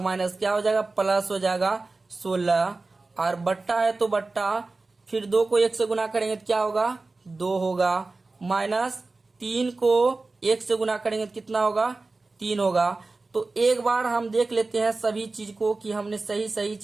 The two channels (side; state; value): left; quieter; 3.5 dB